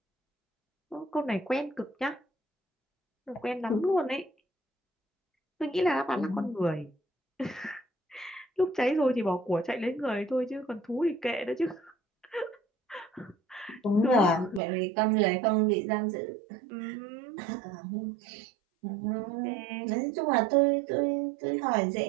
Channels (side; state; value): left; drops out; at 14.6 s